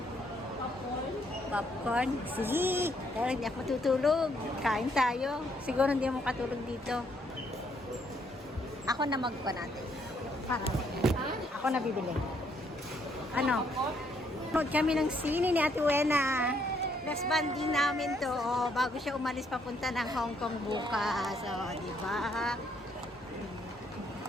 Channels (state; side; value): normal; both; correlation 0.71